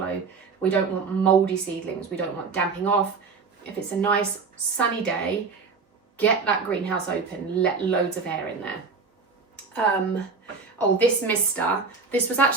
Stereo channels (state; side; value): quieter; left; 4.8 dB